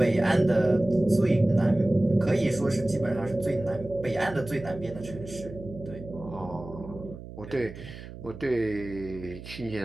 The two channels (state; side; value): noise; right; hum, 14 dB below the sound